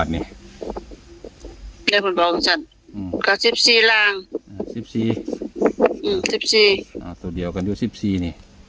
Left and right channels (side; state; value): both; identical; correlation 1.00